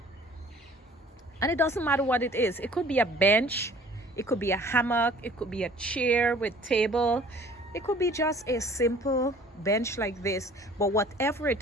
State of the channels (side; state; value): both; normal; correlation 0.52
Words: And it doesn't matter what it is. It could be a bench, it could be a hammock, it could be a chair with table, it could be just a simple bench like this. But whatever